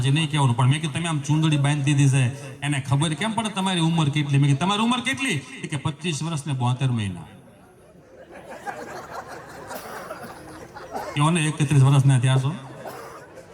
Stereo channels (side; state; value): both; identical; correlation 1.00